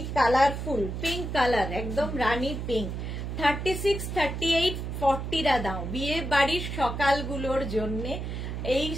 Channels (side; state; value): right; noise; hum, 5 dB below the sound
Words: কালারফুল, পিঙ্ক কালার, একদম রানী পিঙ্ক। 36, 38, 40 রা দাও। বিয়ে বাড়ির সকালগুলোর জন্য এই